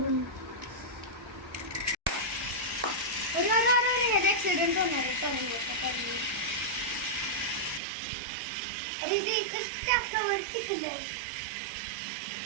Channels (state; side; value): drops out; left; at 7.8 s